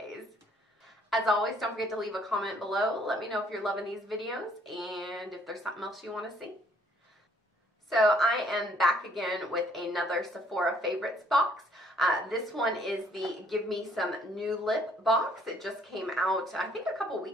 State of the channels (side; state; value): both; normal; correlation 0.63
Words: As always, don't forget to leave a comment below. Let me know if you're loving these videos and if there's something else you want to see. So I am back again with another Sephora favorites box. This one is the Give Me Some New Lip box. It just came out, I think, a couple